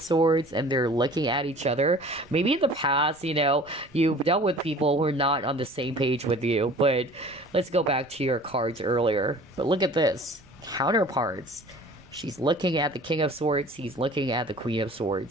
Swords, and they're looking at each other. Maybe in the past, you've dealt with people who are not on the same page with you, but let's go back to your cards earlier. But look at this. Counterparts. She's looking at the King of Swords. He's looking at the Queen of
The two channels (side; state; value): right; noise; rumble, 27 dB below the sound